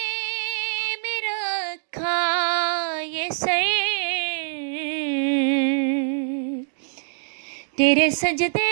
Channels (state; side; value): silent; left; digital silence